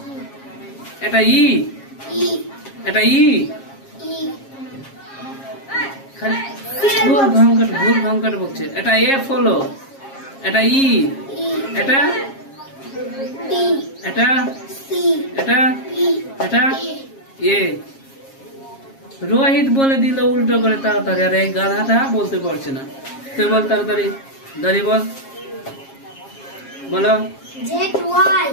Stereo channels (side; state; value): right; late; 7.4 ms